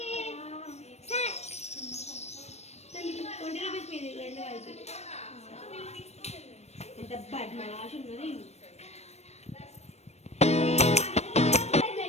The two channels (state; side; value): late; right; 0.31 ms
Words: రూపీస్ మీది రెండు కలిపి. ఎంత బద్మాష్ ఉన్నది.